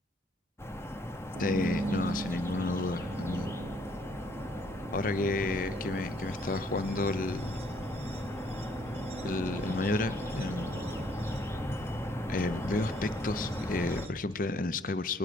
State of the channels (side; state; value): both; normal; correlation 0.65